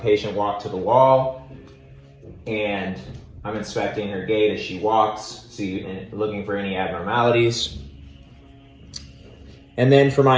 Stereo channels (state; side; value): identical; both; correlation 1.00